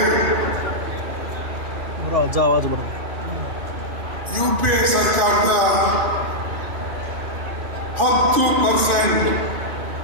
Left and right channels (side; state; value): left; late; 2.4 ms